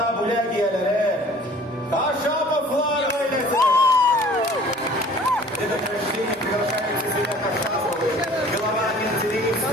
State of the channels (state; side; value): normal; both; correlation 0.50